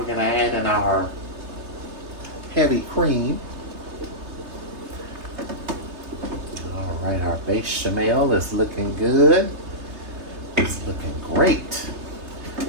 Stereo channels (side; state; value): left; late; 3.3 ms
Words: going to add in our our heavy cream. All right, our bechamel is looking good. It's looking great.